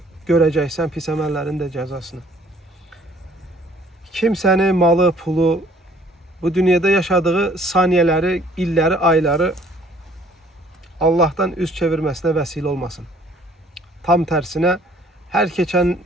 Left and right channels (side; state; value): both; normal; correlation 0.57